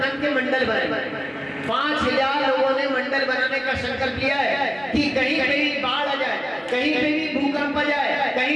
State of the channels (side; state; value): both; identical; correlation 1.00